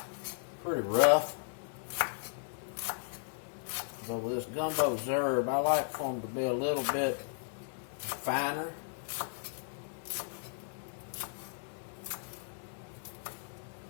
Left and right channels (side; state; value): right; silent; digital silence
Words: rough. But with this gumbo herb, I like for them to be a little bit finer.